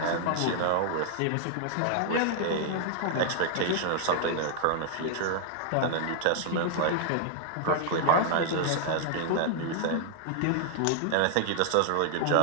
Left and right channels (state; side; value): different; both; correlation 0.00